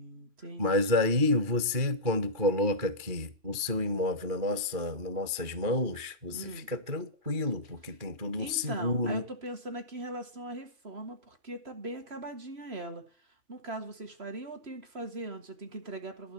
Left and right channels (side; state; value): left; late; 2.4 ms